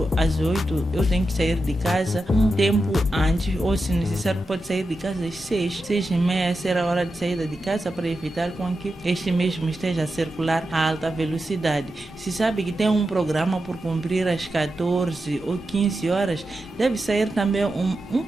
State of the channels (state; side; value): normal; both; correlation 0.89